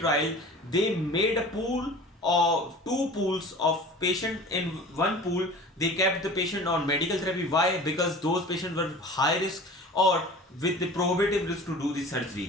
they made a pool of 2 pools of patient. In one pool, they kept the patient on medical therapy. Why? Because those patients were high risk or with the prohibitive risk to do the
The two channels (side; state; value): both; normal; correlation 0.41